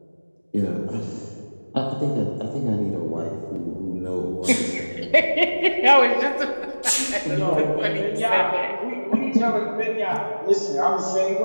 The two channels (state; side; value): inverted; both; correlation -1.00